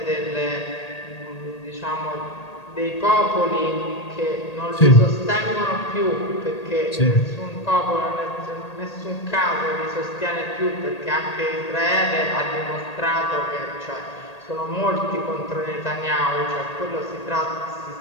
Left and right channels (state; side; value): late; right; 1.8 ms